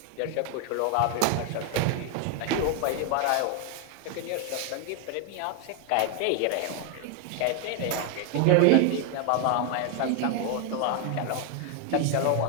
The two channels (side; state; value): both; different; correlation 0.01